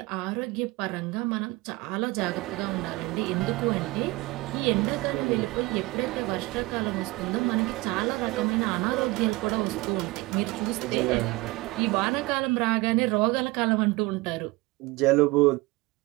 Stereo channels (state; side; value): quieter; left; 22.2 dB